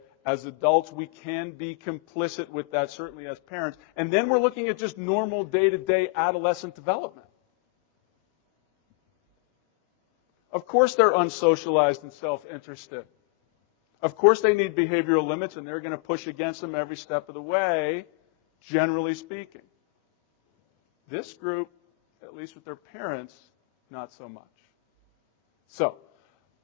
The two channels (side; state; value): right; quieter; 31.0 dB